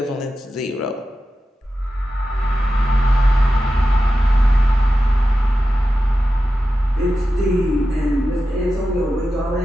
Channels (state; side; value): normal; both; correlation 0.92